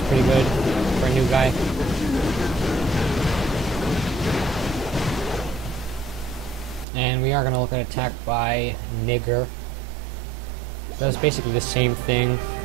pretty good for a new guy. And we are going to look at attack by Nigger. That's basically the same thing.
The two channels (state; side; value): drops out; left; at 6.9 s